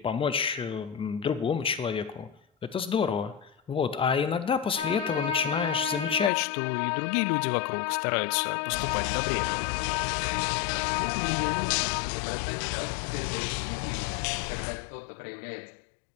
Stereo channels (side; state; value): right; drops out; at 6.3 s